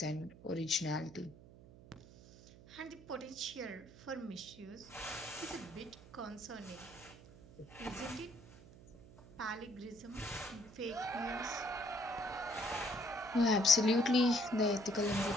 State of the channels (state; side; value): noise; right; hum, 20 dB below the sound